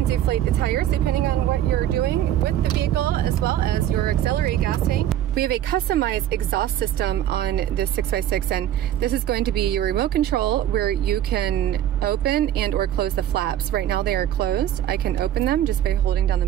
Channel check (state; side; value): quieter; left; 11.5 dB